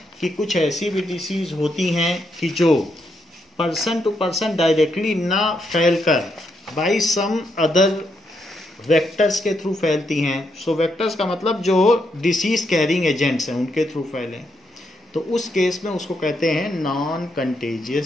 कि कुछ ऐसी भी डिसीज होती हैं कि जो पर्सन टू पर्सन डायरेक्टली ना फैलकर बाई सम अदर वेक्टर्स के थ्रू फैलती हैं। सो वेक्टर्स का मतलब जो डिसीज कैरिंग एजेंट्स हैं उनके थ्रू फैले, तो उस केस में उसको कहते हैं non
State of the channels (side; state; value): both; normal; correlation 0.79